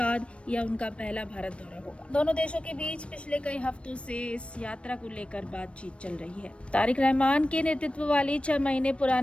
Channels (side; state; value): right; late; 0.060 ms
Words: यह उनका पहला भारत दौरा होगा। दोनों देशों के बीच पिछले कई हफ्तों से इस यात्रा को लेकर बातचीत चल रही है। तारिक रहमान के नेतृत्व वाली 6 महीने